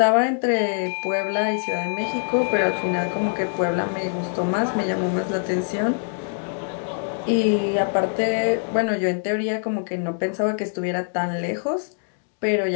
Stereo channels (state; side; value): silent; right; digital silence